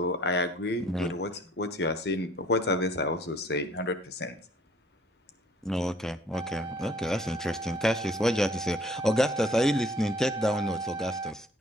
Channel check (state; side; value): normal; both; correlation 0.57